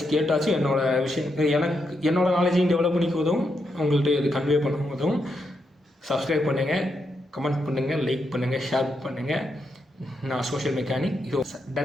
கேட்டாச்சும் என்னோடய விஷயம் என்னோடய நாலேஜையும் டெவலப் பண்ணிக்க உதவும், உங்கள்கிட்ட இது கன்வே பண்ண உதவும். சப்ஸ்கிரைப் பண்ணுங்கள், கமெண்ட் பண்ணுங்கள், லைக் பண்ணுங்கள், ஷேர் பண்ணுங்கள். நான் சோஷியல் மெக்கானிக், இது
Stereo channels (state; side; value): normal; both; correlation 0.82